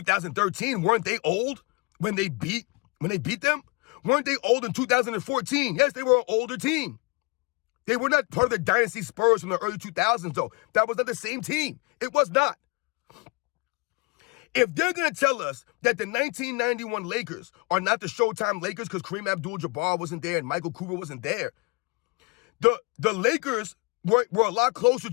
weren't they old when they beat them? Weren't they old in 2014? Yes, they were an older team. They were not part of the dynasty Spurs from the early 2000s, though. That was not the same team. It was not. If they're going to tell us that the 1991 Lakers are not the Showtime Lakers because Kareem Abdul-Jabbar wasn't there and Michael Cooper wasn't there, the Lakers were a lot closer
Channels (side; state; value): right; quieter; 28.1 dB